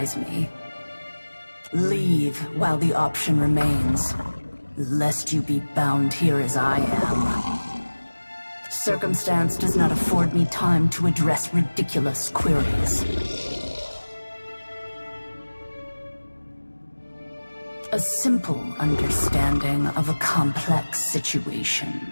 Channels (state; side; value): inverted; both; correlation -1.00